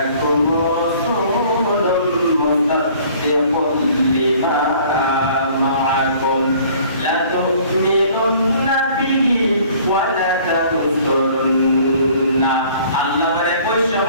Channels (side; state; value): both; inverted; correlation -0.53